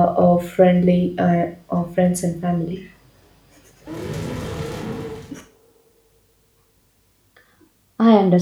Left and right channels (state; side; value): identical; both; correlation 1.00